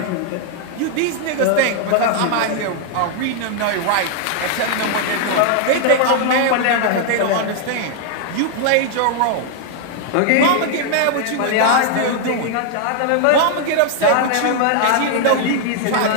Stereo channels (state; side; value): different; both; correlation 0.00